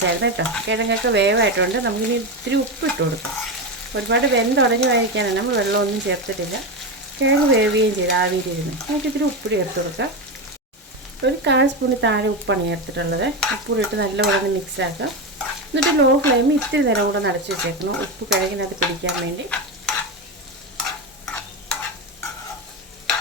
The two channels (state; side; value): normal; both; correlation 0.15